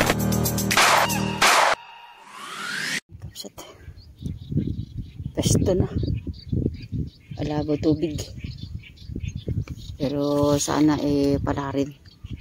Kapsat. Pesto na. Alabo tubig. Pero sana pala rin.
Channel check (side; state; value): both; identical; correlation 1.00